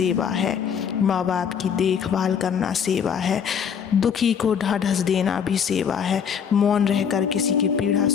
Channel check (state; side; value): quieter; right; 7.4 dB